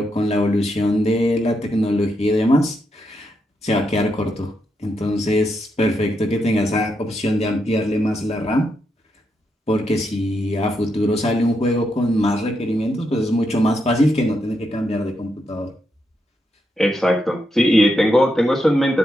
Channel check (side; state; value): both; normal; correlation 0.82